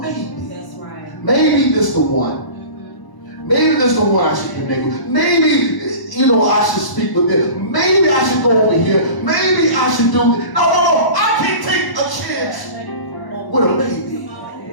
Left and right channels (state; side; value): late; right; 1.0 ms